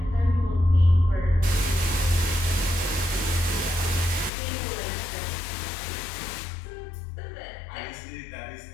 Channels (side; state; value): right; drops out; at 4.3 s